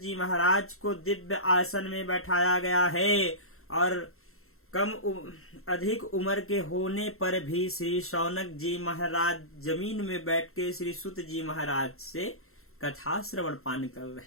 महाराज को दिव्य आसन में बैठाया गया है और अधिक उम्र के होने पर भी श्री शौनक जी महाराज जमीन में बैठ के श्री सुत जी महाराज से कथा श्रवण पान कर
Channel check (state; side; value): late; right; 0.62 ms